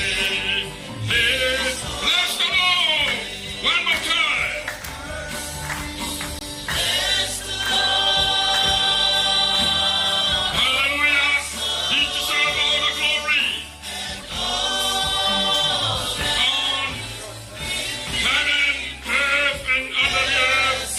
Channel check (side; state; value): both; identical; correlation 1.00